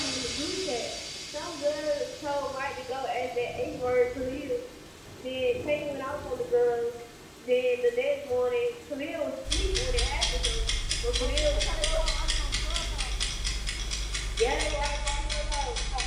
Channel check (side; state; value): both; identical; correlation 1.00